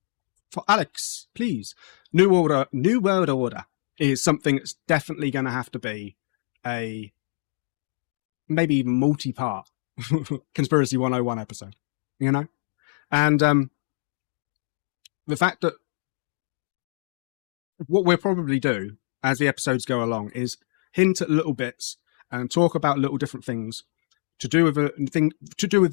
For Alex, please. New World Order is something that's definitely going to have to be a maybe even multi-part Conspiracy 101 episode, you know? And the fact that what we'll probably do as the episodes go along is hint at little bits and talk about little different things to do with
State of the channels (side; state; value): right; silent; digital silence